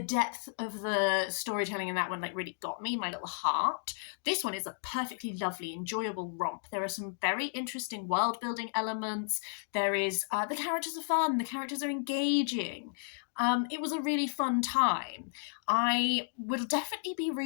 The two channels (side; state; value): right; silent; digital silence